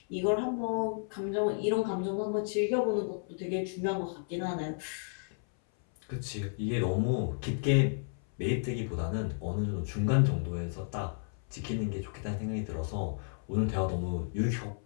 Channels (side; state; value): right; silent; 56 dB below the other